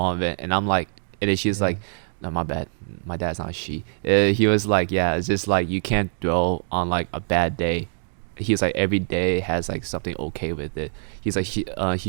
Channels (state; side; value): silent; left; digital silence